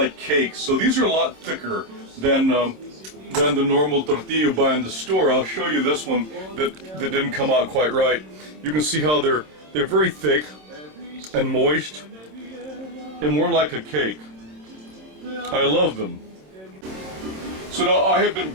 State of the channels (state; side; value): late; left; 26 ms